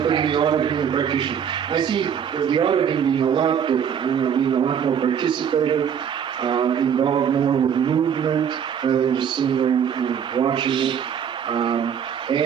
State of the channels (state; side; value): quieter; left; 8.1 dB